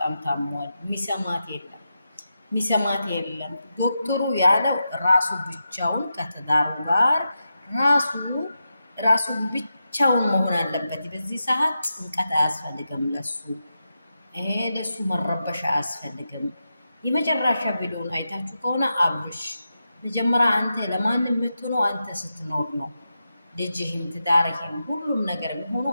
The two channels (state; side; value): inverted; both; correlation -0.89